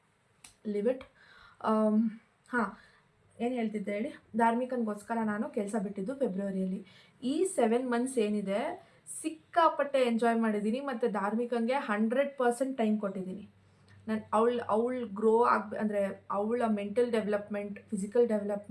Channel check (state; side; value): identical; both; correlation 1.00